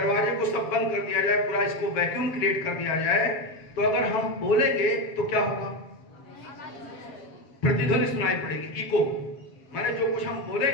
को सब बंद कर दिया जाए, पूरा इसको वैक्यूम क्रिएट कर दिया जाए, तो अगर हम बोलेंगे तो क्या होगा? प्रतिध्वनि सुनाई पड़ेगी, इको। माने जो कुछ हम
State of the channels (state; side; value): late; right; 7.5 ms